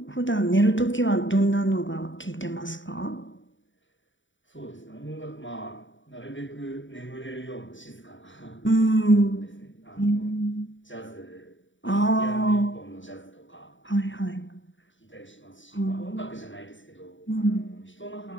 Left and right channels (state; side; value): late; right; 0.55 ms